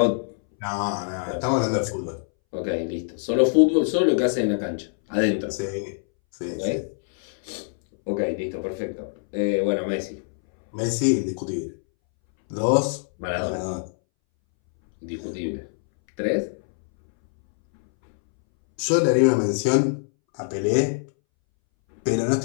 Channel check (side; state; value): right; silent; 63 dB below the other